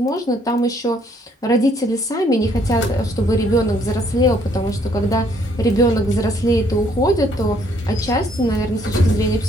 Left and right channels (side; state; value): both; normal; correlation 0.66